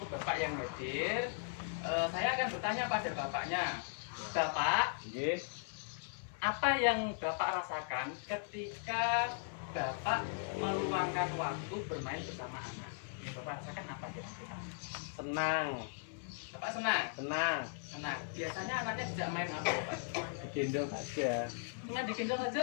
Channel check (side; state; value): right; silent; 52 dB below the other